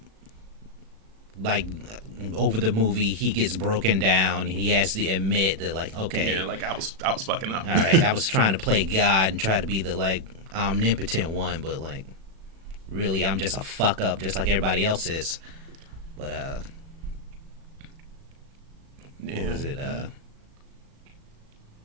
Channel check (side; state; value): left; late; 36 ms